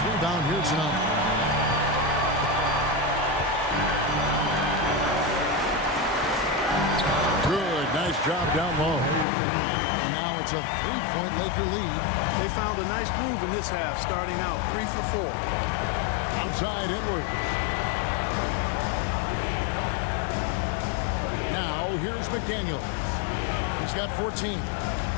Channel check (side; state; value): right; drops out; at 9.2 s